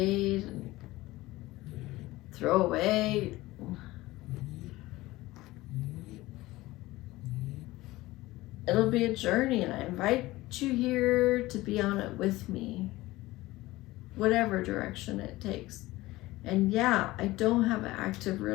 and throw away. It'll be a journey, and I invite you here to be on it with me, whatever direction it takes. And yeah, I don't have an active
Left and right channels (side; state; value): right; quieter; 18.7 dB